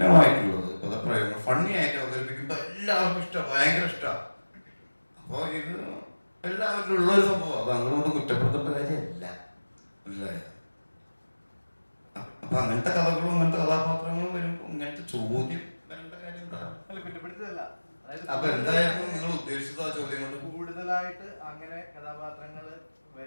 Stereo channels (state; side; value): inverted; both; correlation -1.00